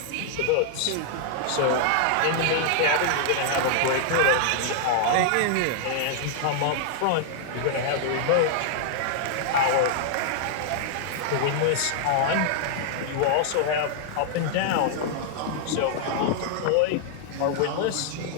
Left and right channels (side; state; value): both; different; correlation -0.01